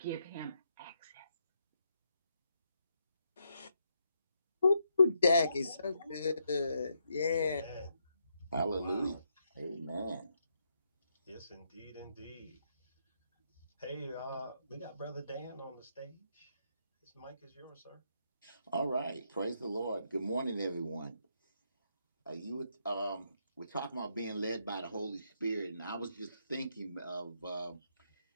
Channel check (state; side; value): inverted; both; correlation -0.79